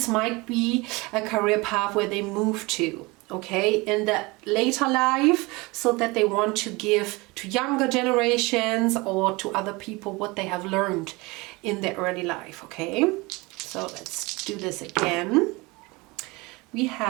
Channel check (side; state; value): left; quieter; 24.3 dB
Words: might be a career path where they move to, okay, in the later life, so that they want to give to younger generations or to other people what they have learned in their early life, okay? So let's do this again. We